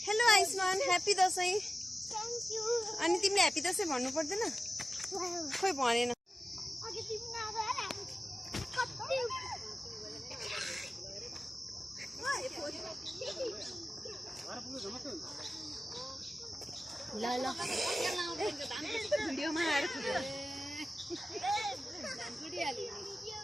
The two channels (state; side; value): normal; both; correlation 0.95